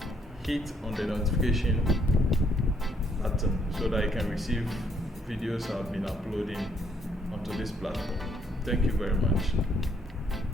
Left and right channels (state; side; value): normal; both; correlation 0.70